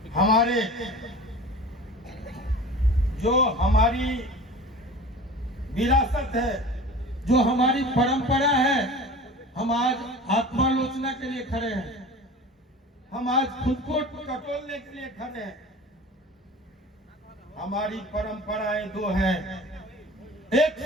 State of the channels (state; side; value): normal; both; correlation 0.38